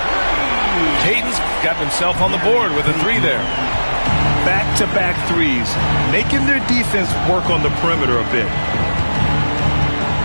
Payton's got himself on the board with a 3 there. Back-to-back threes, making their defense work on the perimeter a bit.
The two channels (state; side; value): inverted; both; correlation -1.00